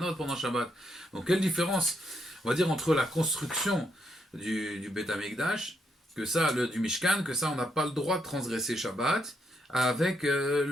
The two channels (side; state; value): both; normal; correlation 0.77